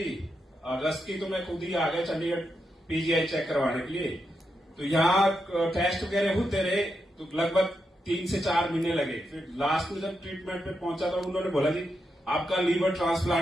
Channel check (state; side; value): normal; both; correlation 0.85